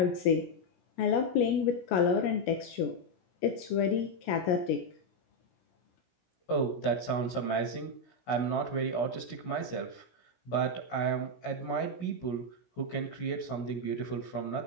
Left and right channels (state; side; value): late; right; 17 ms